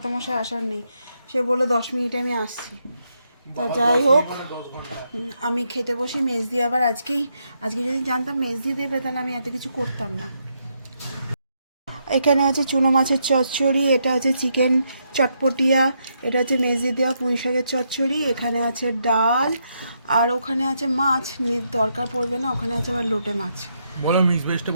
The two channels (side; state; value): both; inverted; correlation -0.79